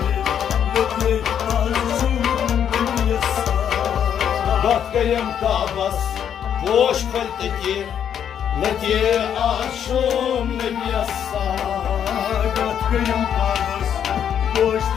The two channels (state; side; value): quieter; right; 8.9 dB